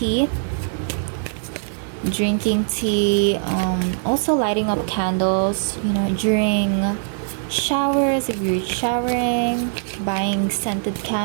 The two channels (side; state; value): left; silent; 63 dB below the other